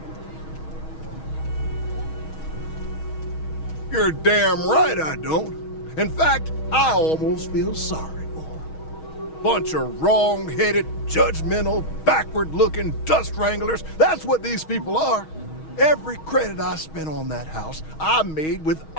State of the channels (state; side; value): late; right; 6.3 ms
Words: You're damn right I don't. In fact, I almost feel sorry for her. Bunch of wrong-headed, judgmental, backward-looking dust wranglers. That's what these people are. Every credit I spent on that house, I made with